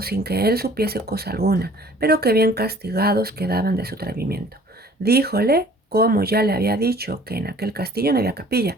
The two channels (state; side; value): normal; both; correlation 0.52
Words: sin que él supiese cosa alguna, pero que bien castigados quedaban de su atrevimiento. Díjole como ya le había dicho que en aquel castillo no había capilla,